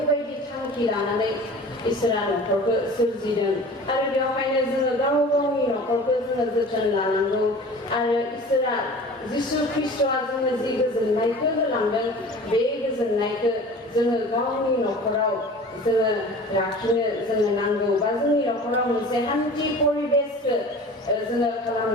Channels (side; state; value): both; normal; correlation 0.41